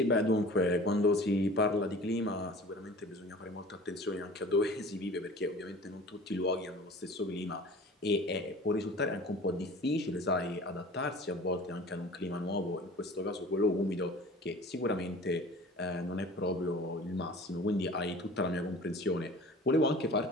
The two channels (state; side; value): normal; both; correlation 0.43